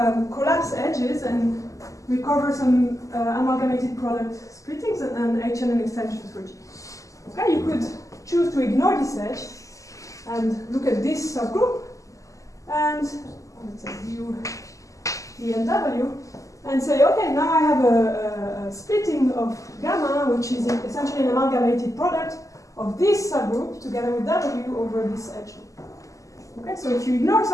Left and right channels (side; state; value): right; late; 0.16 ms